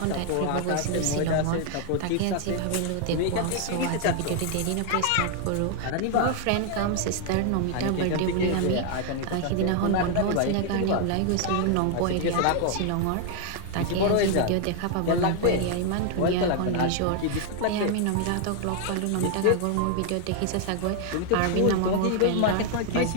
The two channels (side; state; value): both; different; correlation 0.00